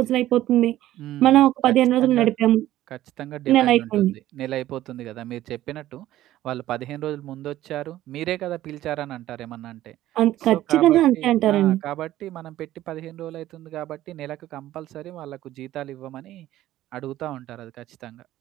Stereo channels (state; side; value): quieter; left; 14.2 dB